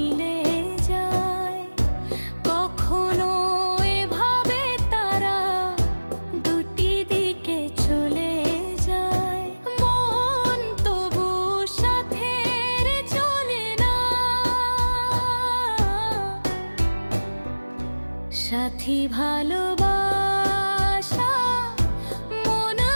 যায়, কখনো এভাবে তারা দুটি দিকে চলে যায়। মন তবু সাথের চলে না, সাথী ভালোবাসা মন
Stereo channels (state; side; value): inverted; both; correlation -1.00